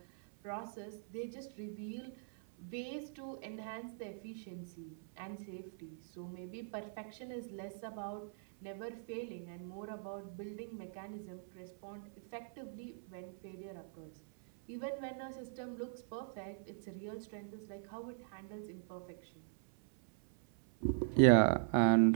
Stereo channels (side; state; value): left; silent; 51 dB below the other